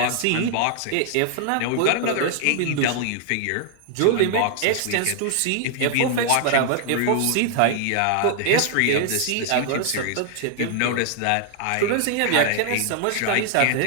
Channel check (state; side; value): different; both; correlation 0.00